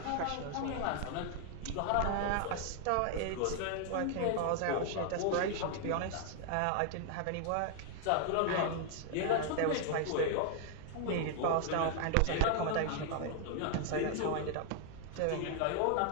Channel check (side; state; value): both; different; correlation 0.00